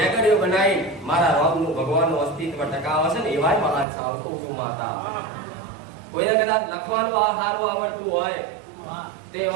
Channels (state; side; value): drops out; left; at 3.9 s